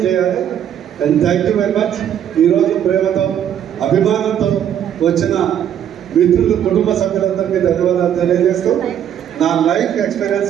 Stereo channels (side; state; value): left; quieter; 9.7 dB